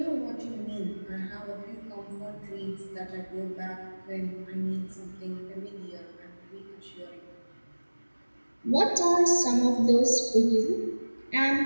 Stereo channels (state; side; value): inverted; both; correlation -1.00